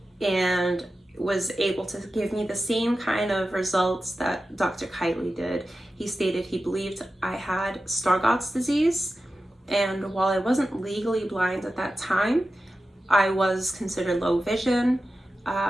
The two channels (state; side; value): normal; both; correlation 0.93